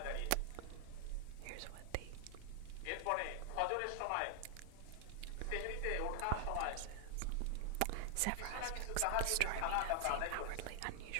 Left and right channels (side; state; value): both; different; correlation 0.00